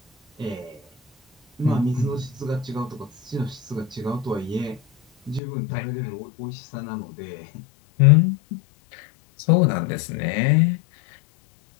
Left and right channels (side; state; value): right; drops out; at 5.4 s